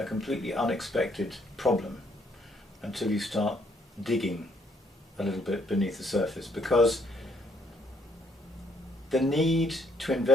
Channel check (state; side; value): normal; both; correlation 0.68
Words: completely unexpected problem until you start digging a little bit beneath the surface, because the need to